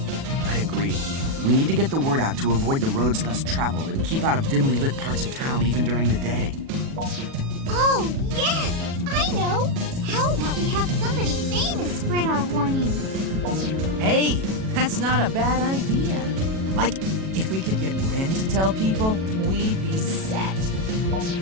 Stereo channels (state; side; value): late; left; 37 ms